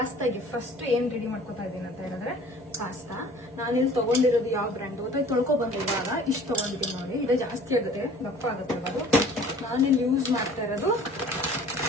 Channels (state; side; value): normal; both; correlation 0.49